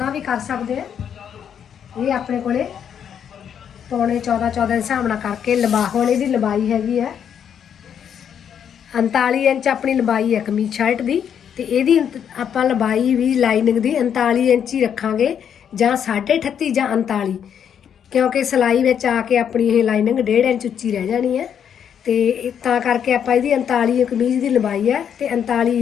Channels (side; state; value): right; quieter; 8.4 dB